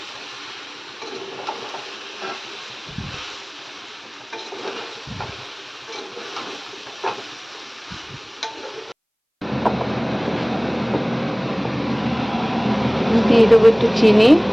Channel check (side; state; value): both; identical; correlation 1.00